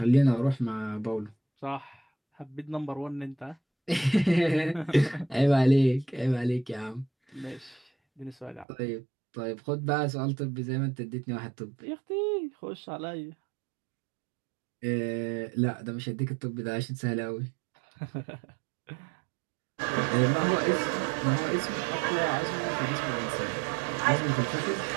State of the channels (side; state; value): left; drops out; at 8.7 s